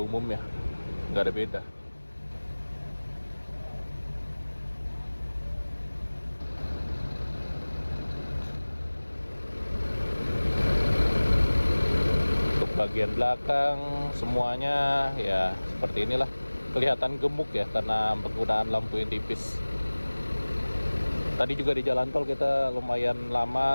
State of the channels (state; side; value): inverted; both; correlation -1.00